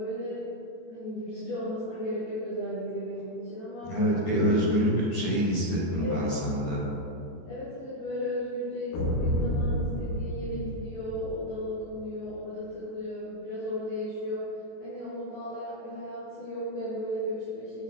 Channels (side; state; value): right; late; 22 ms